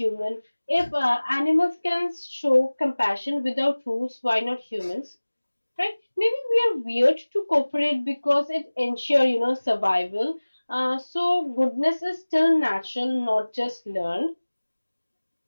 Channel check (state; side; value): inverted; both; correlation -1.00